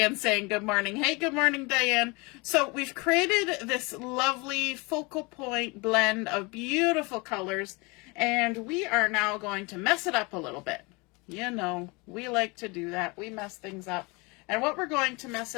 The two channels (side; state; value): right; quieter; 27.4 dB